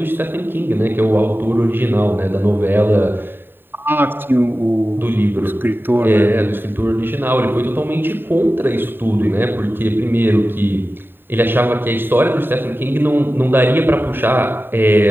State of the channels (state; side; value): late; left; 0.098 ms